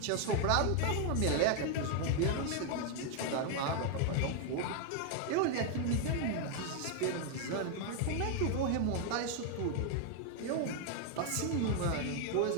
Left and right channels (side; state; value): both; different; correlation 0.00